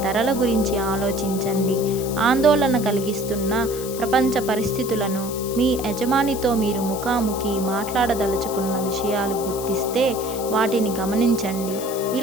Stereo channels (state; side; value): noise; left; hiss, 11 dB below the sound